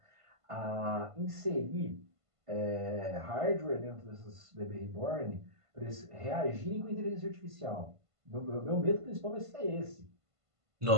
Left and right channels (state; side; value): late; left; 1.5 ms